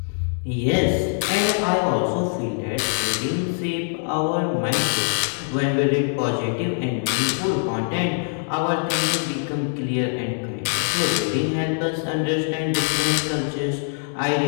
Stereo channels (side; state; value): right; silent; 63 dB below the other